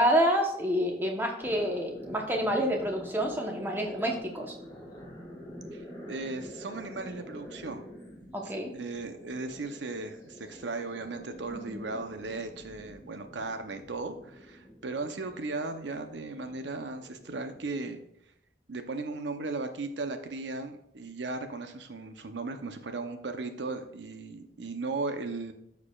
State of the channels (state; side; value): normal; both; correlation 0.35